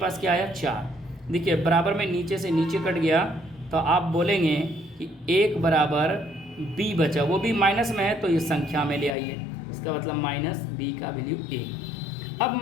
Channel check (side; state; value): right; drops out; at 9.2 s